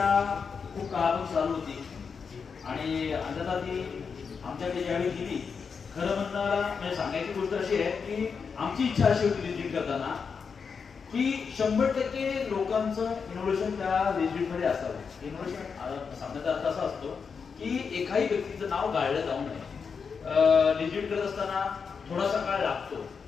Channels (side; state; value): right; quieter; 5.8 dB